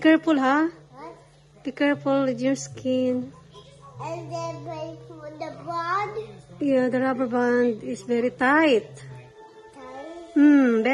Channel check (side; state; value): both; identical; correlation 1.00